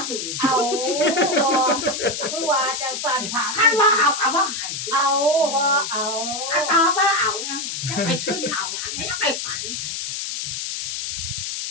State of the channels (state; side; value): noise; left; hiss, 4 dB below the sound